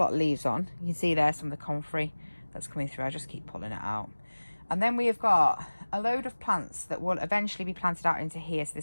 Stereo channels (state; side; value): inverted; both; correlation -1.00